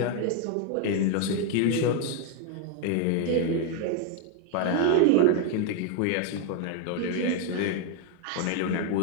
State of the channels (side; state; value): both; different; correlation 0.01